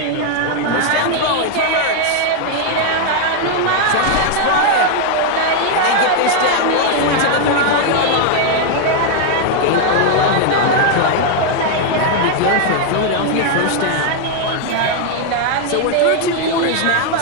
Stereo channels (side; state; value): both; different; correlation 0.00